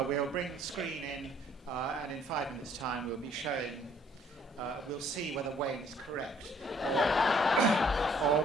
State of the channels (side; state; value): both; normal; correlation 0.62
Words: bring the screen in and in 5 minutes' time we'll be showing, we'll see whether Wayne is correct, or